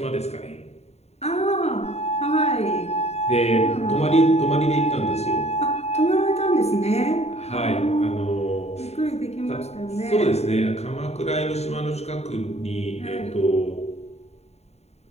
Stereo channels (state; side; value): late; right; 0.31 ms